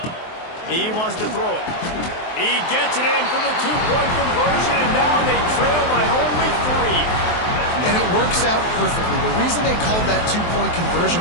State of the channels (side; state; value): right; late; 23 ms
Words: He wants to throw it. He gets it in for the 2-point conversion, and now they trail by only 3. And it works out perfectly. The reason they called that 2-point